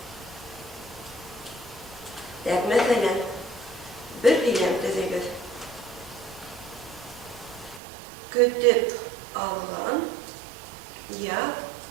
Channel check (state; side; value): drops out; left; at 7.8 s